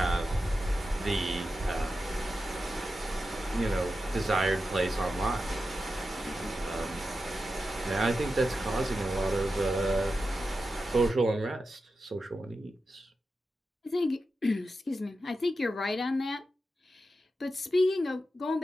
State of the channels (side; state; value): both; normal; correlation 0.90